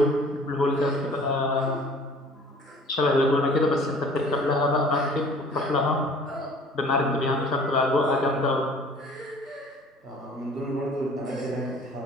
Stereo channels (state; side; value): normal; both; correlation 0.50